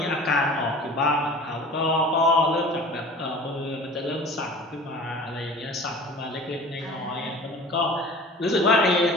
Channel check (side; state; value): both; normal; correlation 0.42